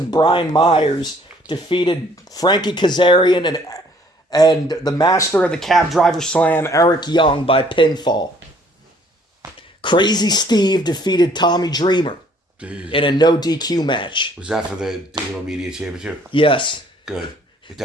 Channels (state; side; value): normal; both; correlation 0.60